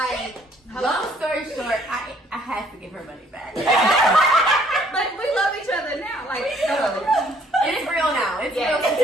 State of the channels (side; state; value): both; normal; correlation 0.62